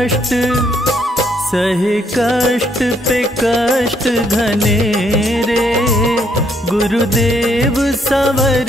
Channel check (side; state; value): both; normal; correlation 0.71